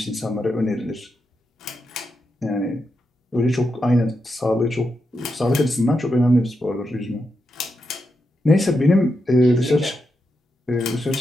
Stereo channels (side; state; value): both; normal; correlation 0.86